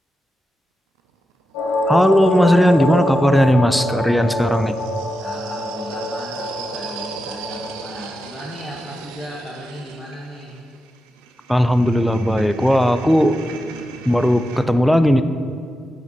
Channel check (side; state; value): both; normal; correlation 0.89